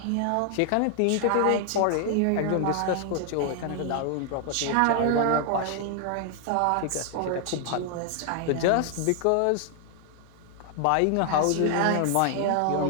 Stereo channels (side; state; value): both; different; correlation 0.00